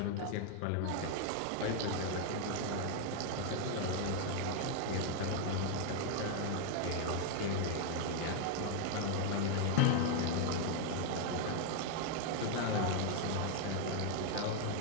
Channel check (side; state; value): both; different; correlation 0.00